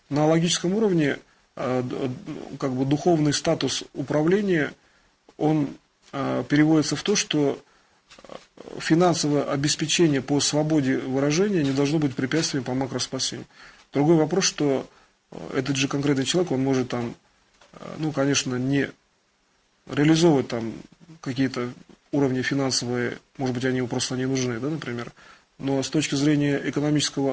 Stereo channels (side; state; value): both; identical; correlation 1.00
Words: на логическом уровне духовный статус управления, он переводится в то, что финансовое обеспечение по свободе выражения не должно быть препятствием по макроспасению. Другой вопрос, что этот же конкретный человек, он может там, конечно, не реализовывать там какие-то уровни финансовые, может быть, они ему просто не нужны, да, например. Но с точки зрения